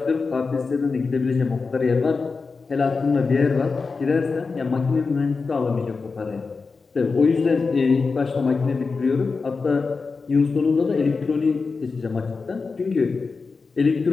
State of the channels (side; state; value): right; quieter; 4.5 dB